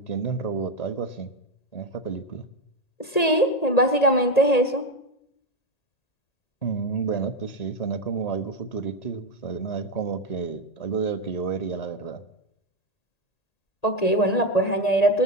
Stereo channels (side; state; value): right; late; 1.8 ms